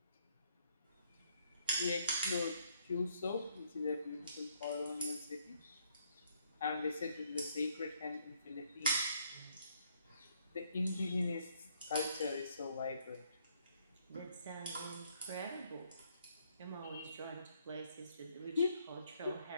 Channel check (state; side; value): inverted; both; correlation -0.70